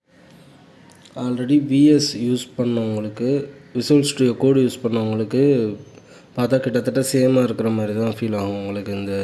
ஆல்ரெடி விஎஸ் யூஸ் பண்ணவங்களுக்கு, விசுவல் ஸ்டுடியோ கோடு யூஸ் பண்ணவங்களுக்கு பார்த்தா கிட்டத்தட்ட சேமாக இருக்கிற மாதிரி தான் ஃபீல் ஆகும் உங்களுக்கு இந்த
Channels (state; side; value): identical; both; correlation 1.00